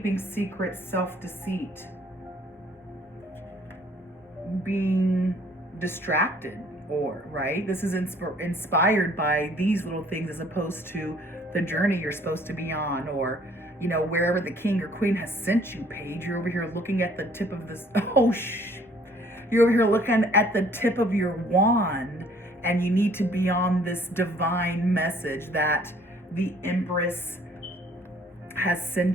secrets, self-deceit, being distracted, or, right? This is inspired by these little things as opposed to the journey you're supposed to be on, or, you know, wherever the king or queen has sent you, Paige. You're over here looking at the tip of this, you're over here looking at the tip of your wand, and you need to be on this divine message that the Empress has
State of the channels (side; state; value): both; normal; correlation 0.59